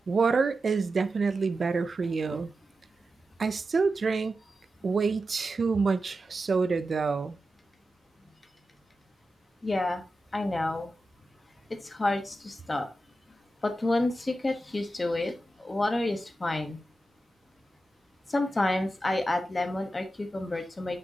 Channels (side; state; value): both; normal; correlation 0.91